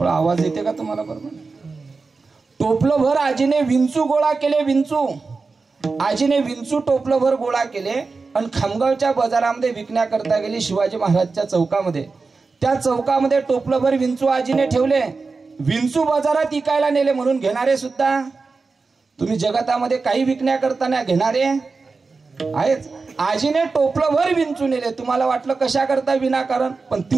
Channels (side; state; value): left; quieter; 4.2 dB